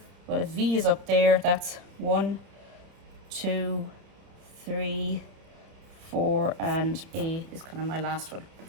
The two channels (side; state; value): left; late; 31 ms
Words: well, if V is up there, that's 1, 2, 3, 4, and A is kind of my last one.